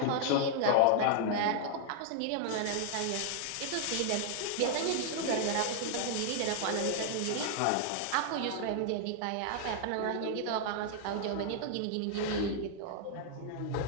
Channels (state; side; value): different; both; correlation -0.01